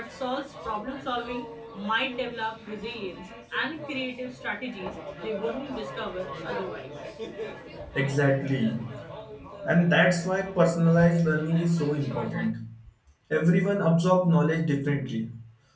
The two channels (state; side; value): identical; both; correlation 1.00